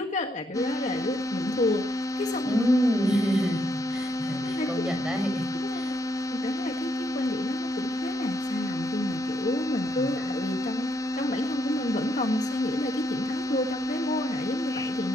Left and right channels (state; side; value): normal; both; correlation 0.76